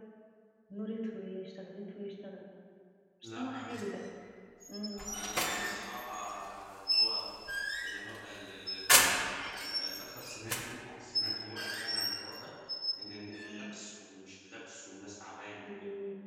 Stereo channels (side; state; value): both; identical; correlation 1.00